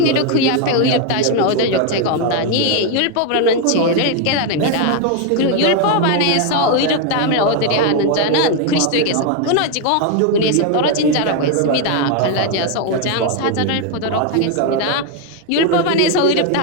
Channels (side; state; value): both; different; correlation 0.01